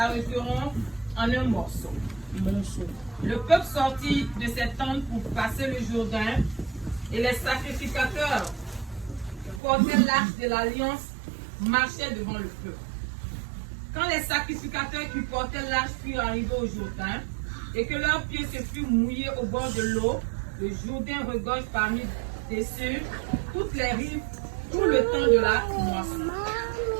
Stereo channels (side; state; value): left; drops out; at 9.6 s